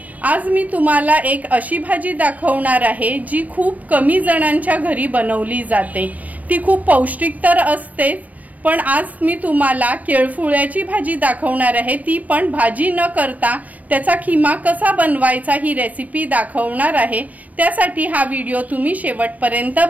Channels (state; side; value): late; left; 0.072 ms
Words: आज मी तुम्हाला एक अशी भाजी दाखवणार आहे जी खूप कमी जणांच्या घरी बनवली जाते। ती खूप पौष्टिक तर असतेच, पण आज मी तुम्हाला केळफुळ्याची भाजी दाखवणार आहे। ती पण भाजी न करता त्याचा खिमा कसा बनवायचा ही रेसिपी दाखवणार आहे। त्यासाठी हा व्हिडिओ तुम्ही शेवटपर्यंत